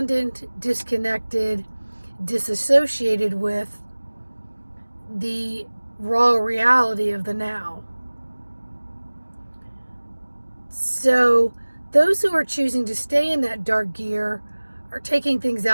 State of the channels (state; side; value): inverted; both; correlation -1.00